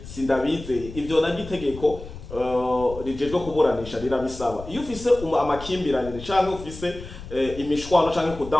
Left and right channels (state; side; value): noise; left; rumble, 13 dB below the sound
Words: sindabizeye ivyo nagitegeko rijejwe kuburanisha rirabisaba. Iyo ufise amakimbirane canke ufise imishwano canke